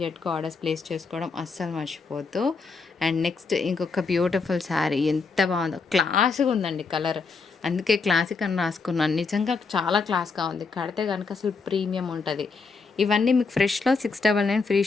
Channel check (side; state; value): right; quieter; 4.6 dB